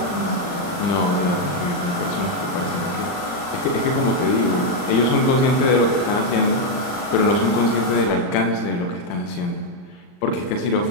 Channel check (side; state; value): right; late; 39 ms